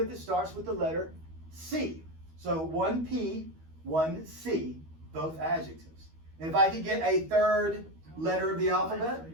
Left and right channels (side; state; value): left; late; 13 ms